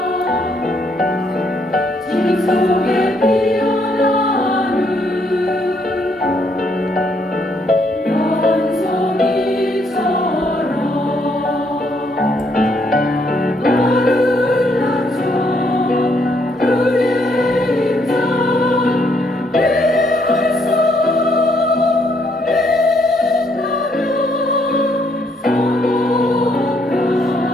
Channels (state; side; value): normal; both; correlation 0.71